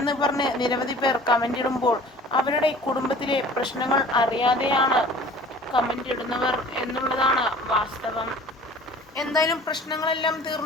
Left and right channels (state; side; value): normal; both; correlation 0.46